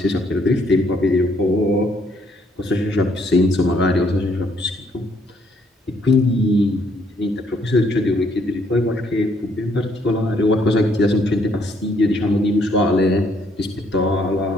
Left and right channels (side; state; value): both; normal; correlation 0.69